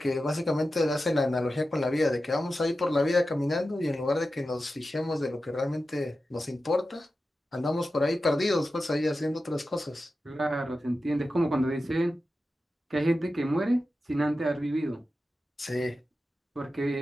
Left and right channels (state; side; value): normal; both; correlation 0.92